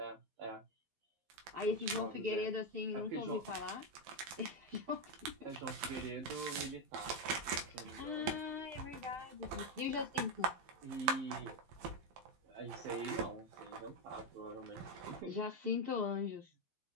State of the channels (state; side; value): late; left; 12 ms